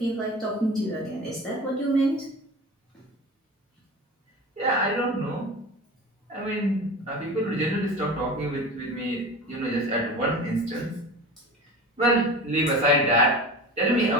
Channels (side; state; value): both; normal; correlation 0.32